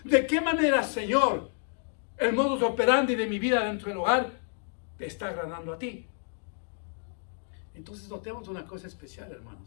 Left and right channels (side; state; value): right; silent; 58 dB below the other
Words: ¿De qué manera, Señor, el modus operandi de mi vida dentro del hogar te está agradando a ti? Entonces notemos una cosa especial,